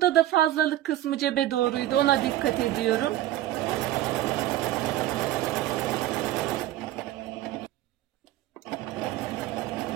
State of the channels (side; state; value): left; quieter; 13.9 dB